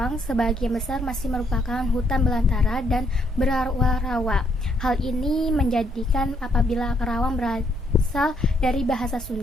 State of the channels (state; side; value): normal; both; correlation 0.72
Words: sebagian besar masih merupakan hutan belantara dan berawa-rawa. Hal ini menjadikan apabila Kerawang berasal dari bahasa